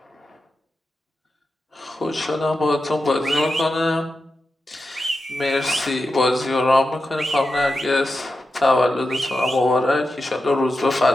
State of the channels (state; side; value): normal; both; correlation 0.90